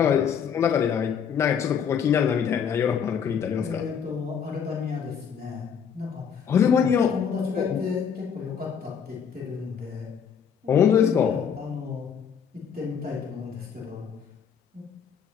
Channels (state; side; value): quieter; right; 7.4 dB